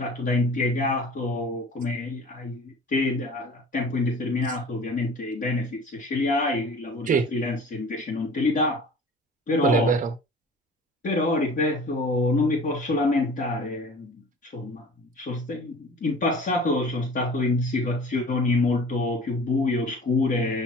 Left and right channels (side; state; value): both; normal; correlation 0.43